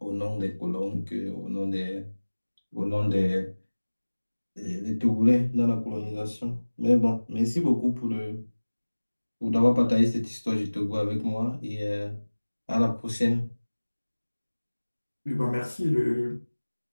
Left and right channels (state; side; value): inverted; both; correlation -1.00